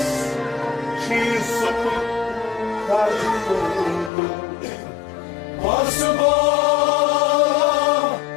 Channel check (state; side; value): drops out; right; at 4.1 s